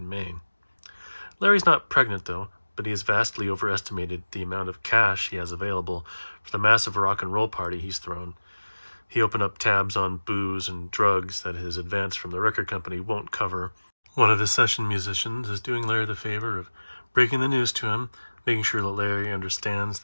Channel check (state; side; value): inverted; both; correlation -1.00